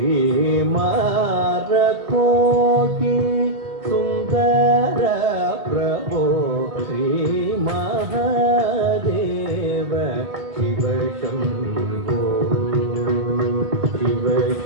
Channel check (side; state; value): left; late; 1.2 ms